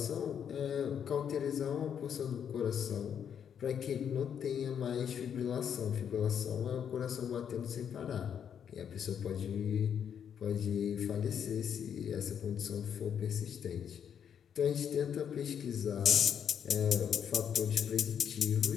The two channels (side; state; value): right; quieter; 8.2 dB